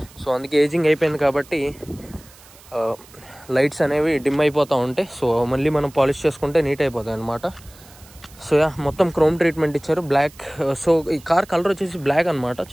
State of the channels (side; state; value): right; noise; hiss, 24 dB below the sound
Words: సో అందుకే ఏజింగ్ అయిపోయింది కాబట్టి లైట్స్ అనేవి డిమ్ అయిపోతూ ఉంటాయి. సో మళ్ళీ మనం పాలిష్ చేసుకుంటే నీట్ అయిపోతాయి అనమాట. సో మొత్తం క్రోమ్ ట్రీట్మెంట్ ఇచ్చారు, బ్లాక్. సో ఈ కార్ కలర్ వచ్చేసి బ్లాక్ అనమాట,